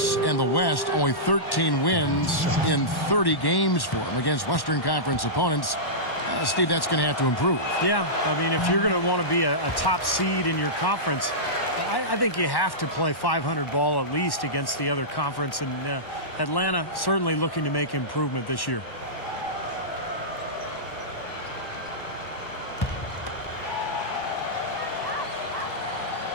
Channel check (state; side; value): late; right; 1.1 ms